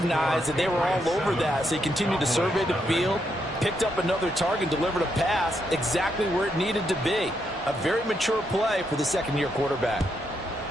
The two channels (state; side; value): normal; both; correlation 0.79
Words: that they were all over that, so he continued to survey the field, picked up another target, delivered a pass exactly where it needed to be. A very mature play for the 2nd-year quarterback.